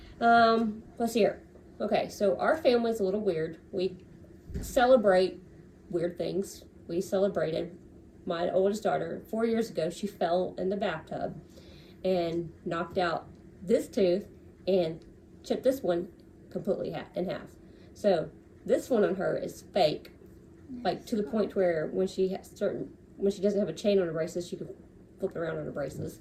know. Let's see here. Okay, so our family's a little weird. We celebrate weird things. We celebrated my oldest daughter 4 years ago. She fell in the bathtub and knocked out this tooth and chipped this one completely in half. So this one on her is fake, like to the point where when she doesn't have a chain on her braces, she can flip around on her braces.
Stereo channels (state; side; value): identical; both; correlation 1.00